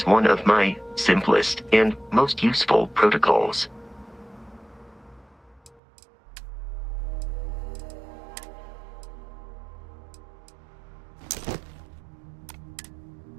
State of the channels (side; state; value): left; drops out; at 5.8 s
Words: one of my simplest and most useful protocols.